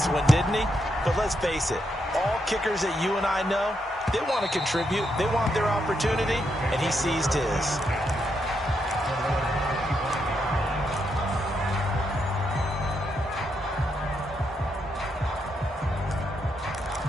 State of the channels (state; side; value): normal; both; correlation 0.80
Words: one, didn't he? But let's face it, all kickers that you and I know, they want to contribute. They want their opportunity, and he seized his.